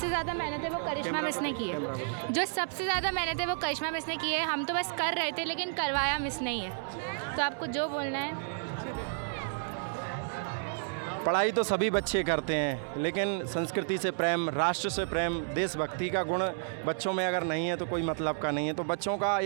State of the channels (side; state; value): left; silent; digital silence